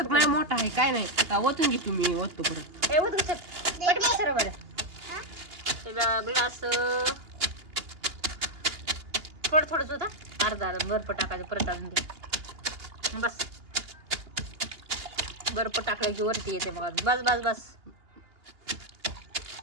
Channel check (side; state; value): left; late; 2.8 ms